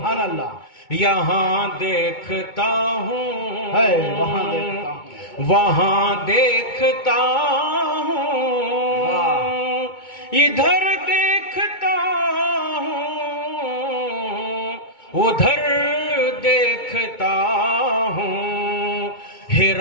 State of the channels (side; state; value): right; late; 2.2 ms